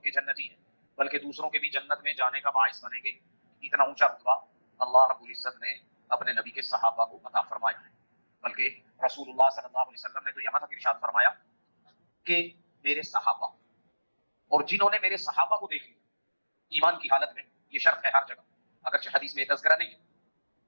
جنتی ہیں، بلکہ دوسروں کے بھی جنت میں جانے کا باعث بنیں گے۔ اتنا اونچا رتبہ اللہ رب العزت نے اپنے نبی کے صحابہ کو عطا فرمایا ہے، بلکہ رسول اللہ صلی اللہ علیہ وسلم نے تو یہاں تک ارشاد فرمایا کہ میرے صحابہ، اور جنہوں نے میرے صحابہ کو دیکھ لیا، ایمان کی حالت میں یہ شرط ہے ہر جگہ، اگرچہ حدیث میں تذکرہ نہیں ہے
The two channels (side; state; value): both; inverted; correlation -1.00